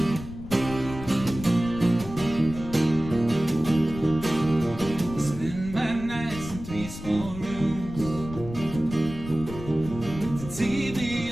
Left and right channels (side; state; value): left; noise; rumble, 11 dB below the sound